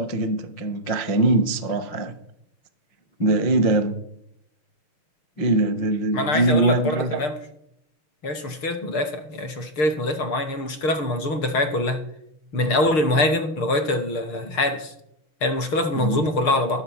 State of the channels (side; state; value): right; late; 6.6 ms